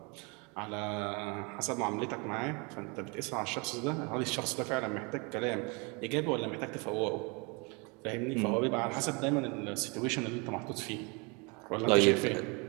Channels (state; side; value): quieter; left; 30.8 dB